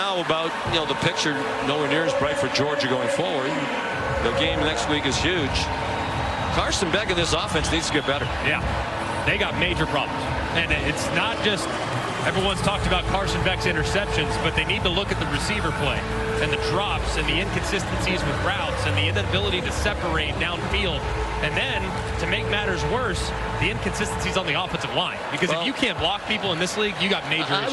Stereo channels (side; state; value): both; identical; correlation 1.00